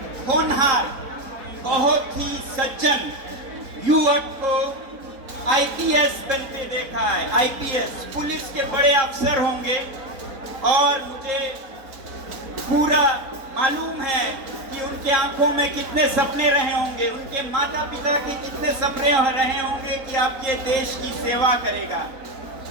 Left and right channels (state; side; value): late; left; 4.0 ms